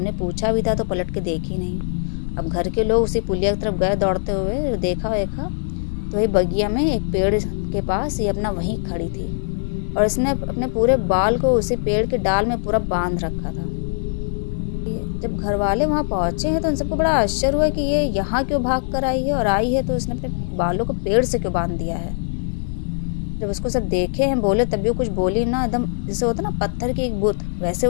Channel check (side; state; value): right; silent; digital silence